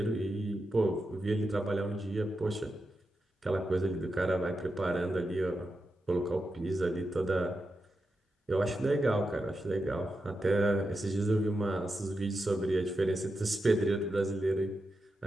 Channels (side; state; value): both; normal; correlation 0.88